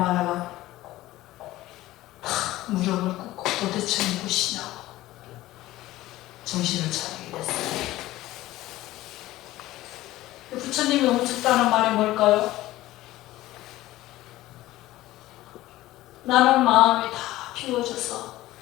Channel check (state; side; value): quieter; right; 16.4 dB